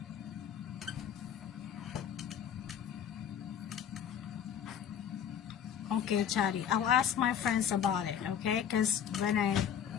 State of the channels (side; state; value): right; quieter; 8.7 dB